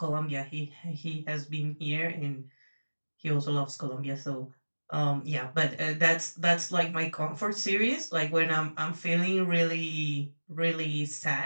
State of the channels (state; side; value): inverted; both; correlation -1.00